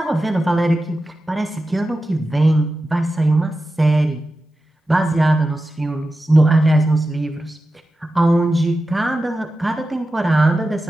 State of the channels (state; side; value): normal; both; correlation 0.92